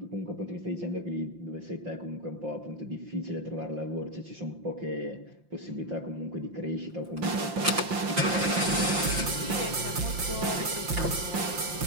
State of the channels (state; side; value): late; left; 5.7 ms